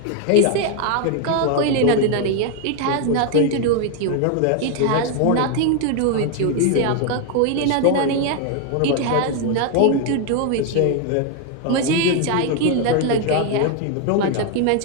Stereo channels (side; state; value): both; different; correlation 0.01